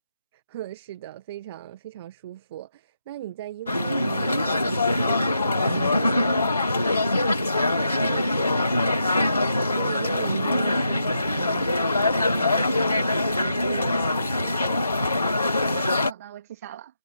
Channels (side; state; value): both; inverted; correlation -0.81